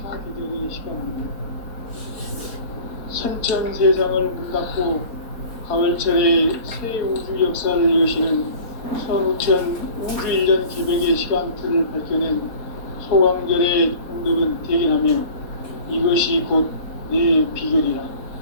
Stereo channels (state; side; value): late; right; 4.3 ms